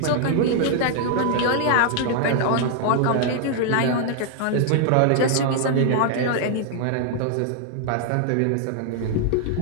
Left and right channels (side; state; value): both; different; correlation 0.00